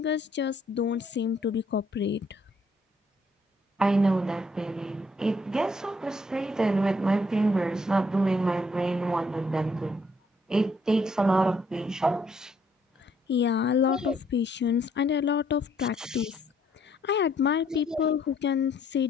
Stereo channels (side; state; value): both; normal; correlation 0.68